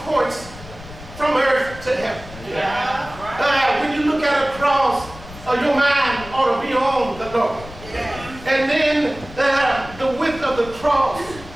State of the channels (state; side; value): noise; left; rumble, 16 dB below the sound